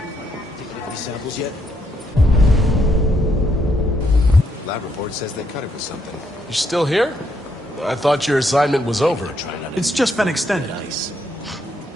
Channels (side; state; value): both; normal; correlation 0.75